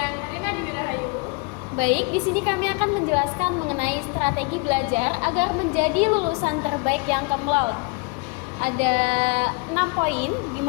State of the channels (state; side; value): quieter; right; 28.2 dB